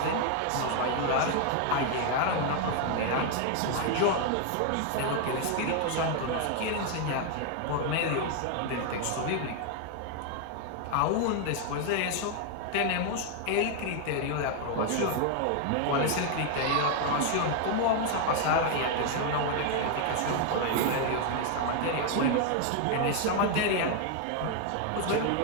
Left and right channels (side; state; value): both; different; correlation 0.00